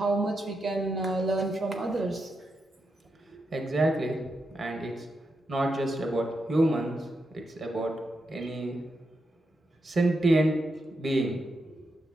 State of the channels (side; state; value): both; normal; correlation 0.85